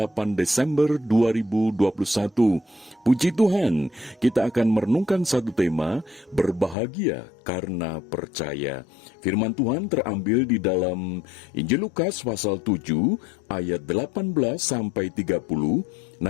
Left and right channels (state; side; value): drops out; right; at 6.8 s